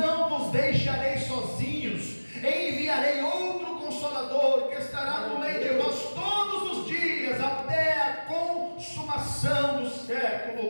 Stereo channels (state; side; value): inverted; both; correlation -1.00